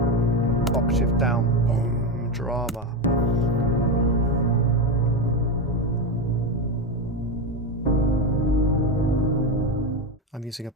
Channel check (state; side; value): normal; both; correlation 0.14